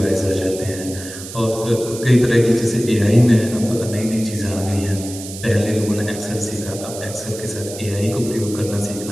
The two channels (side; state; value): right; noise; hiss, 12 dB below the sound